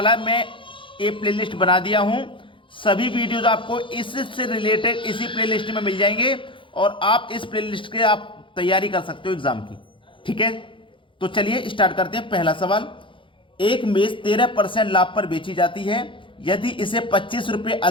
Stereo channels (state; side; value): late; right; 0.25 ms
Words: है, मैं ये प्लेलिस्ट बना दिया हूं। सभी वीडियोस आपको इससे रिलेटेड इसी प्लेलिस्ट में मिल जाएंगे और आप इस प्लेलिस्ट के आप तैयारी कर सकते हो एग्जाम की। ठीक है, तो चलिए स्टार्ट करते हैं। पहला सवाल, एक मेज 13% लाभ पर बेची जाती है। यदि इसे 25 रुपए